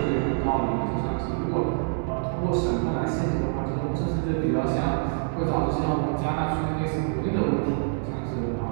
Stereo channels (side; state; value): left; silent; 61 dB below the other